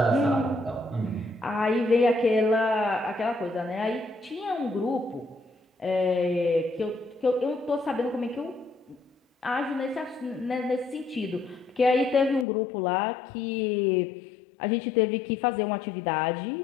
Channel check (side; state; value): right; drops out; at 12.5 s